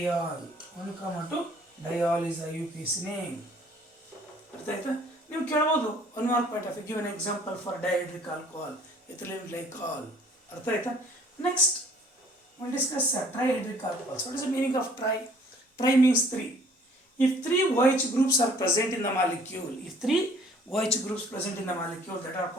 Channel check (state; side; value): normal; both; correlation 0.56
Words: 1,2 diol is IUPAC name. ಅರ್ಥ ಆಯ್ತಾ? ನೀವು ಕೇಳ್ಬೋದು one mark point of give an example for dihydric alcohol, ethylene glycol. ಅರ್ಥ ಆಯ್ತಾ? Next we'll discuss trihydric alcohols. What is the meaning of tri? Tri means 3. If 3 OH groups are present in the molecule, if 3 OH groups present in the molecule, that are